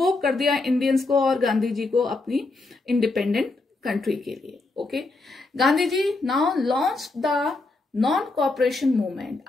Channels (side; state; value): right; quieter; 3.3 dB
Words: कर दिया इंडियंस को और गांधी जी को अपनी इंडिपेंडेंट कंट्री के लिए. Okay, Gandhi ji now launch the non cooperation movement.